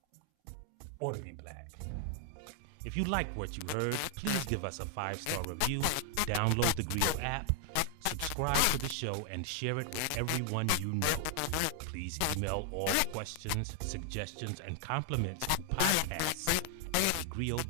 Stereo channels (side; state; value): both; different; correlation 0.00